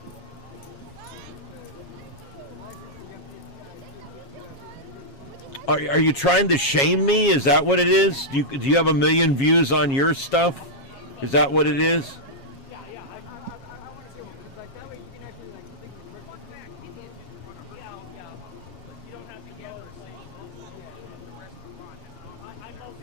Are you trying to shame me? Is that what it is? Do you have 1 million views on your stuff? Is that what it is?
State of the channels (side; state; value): right; late; 7.3 ms